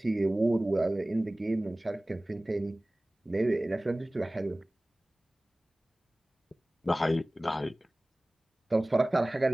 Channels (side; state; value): both; normal; correlation 0.98